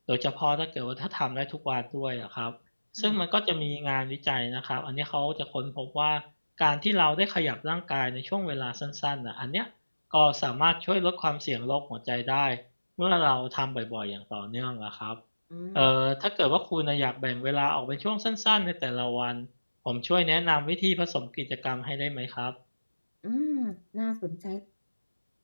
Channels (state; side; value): inverted; both; correlation -1.00